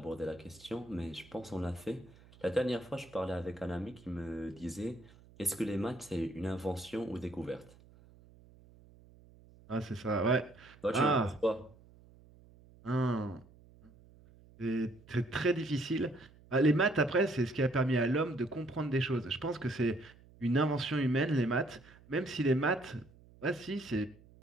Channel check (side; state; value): right; noise; hum, 24 dB below the sound